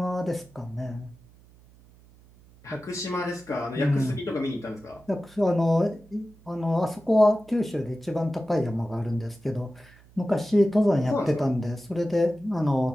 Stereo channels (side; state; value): right; noise; hum, 26 dB below the sound